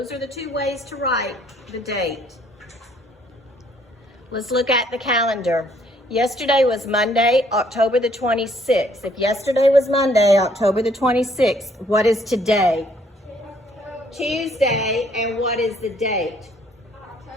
are the two ways to write the date. Let's look at the calendar. Yesterday was Monday, October the 26th. If yesterday was Monday, October the 26th, what is today? Tuesday, and what is the date?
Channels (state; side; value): normal; both; correlation 0.64